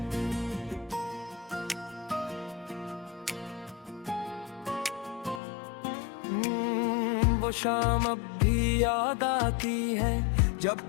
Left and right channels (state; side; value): drops out; right; at 5.4 s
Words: वो शाम अब भी याद आती है जब